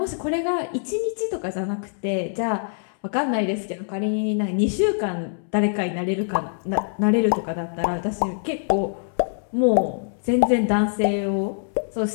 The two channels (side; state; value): right; silent; 63 dB below the other